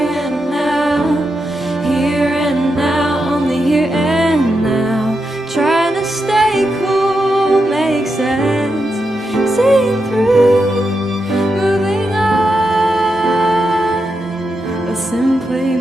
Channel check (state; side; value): normal; both; correlation 0.86